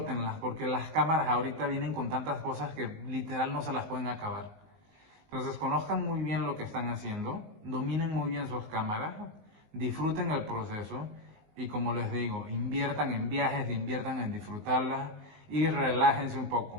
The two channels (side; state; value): left; late; 19 ms